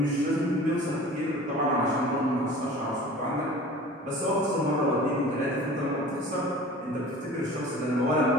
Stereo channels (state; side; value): normal; both; correlation 0.42